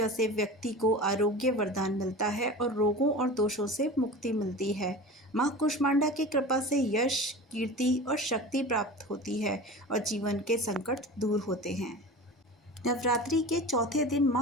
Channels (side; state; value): both; normal; correlation 0.34